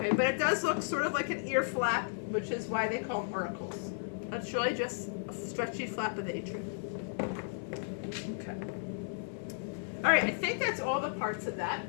but it does look sort of like an ear flap, which is why they call them auricles. It's really just a stretchy flap of the atrium. Okay. All right, I think that's all the parts of that.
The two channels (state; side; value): silent; right; 55 dB below the other